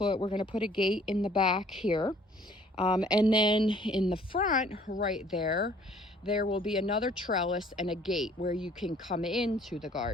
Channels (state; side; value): normal; both; correlation 0.57